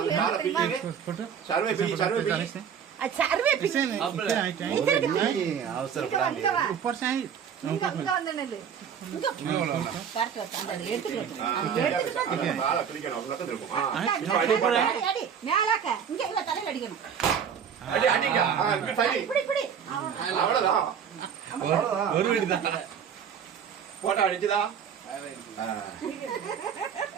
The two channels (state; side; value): quieter; left; 7.7 dB